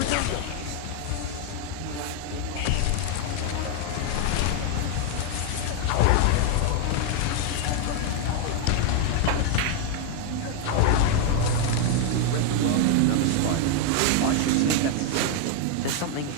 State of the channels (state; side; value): different; both; correlation 0.00